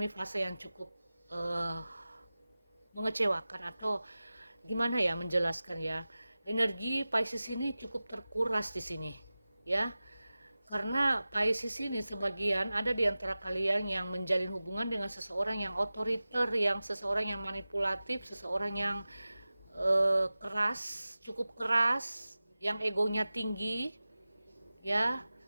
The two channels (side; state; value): both; inverted; correlation -0.96